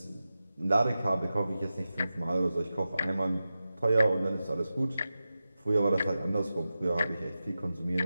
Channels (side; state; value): both; inverted; correlation -0.93